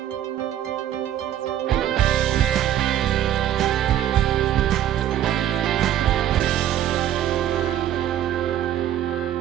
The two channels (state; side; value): quieter; left; 11.4 dB